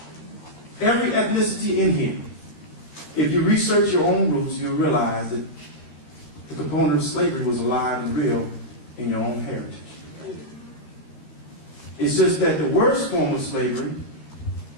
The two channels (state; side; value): late; right; 13 ms